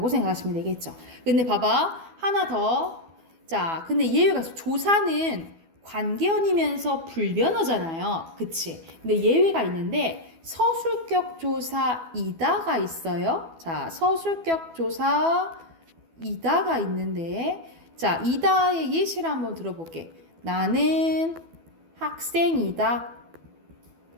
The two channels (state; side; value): late; left; 12 ms